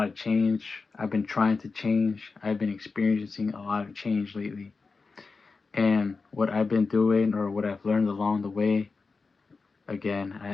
of change. I've been trying to change. I've been experiencing a lot of change lately. And what I've been doing or what I've learned along the way, again, I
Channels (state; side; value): quieter; right; 4.4 dB